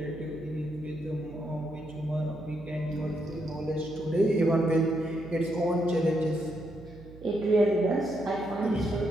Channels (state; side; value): noise; right; hum, 18 dB below the sound